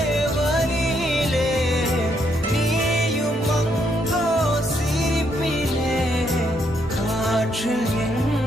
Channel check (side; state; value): both; normal; correlation 0.74